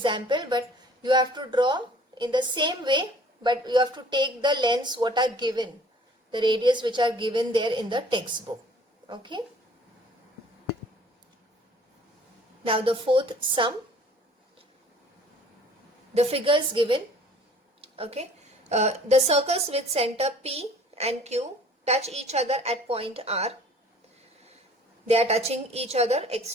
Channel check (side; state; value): both; normal; correlation 0.52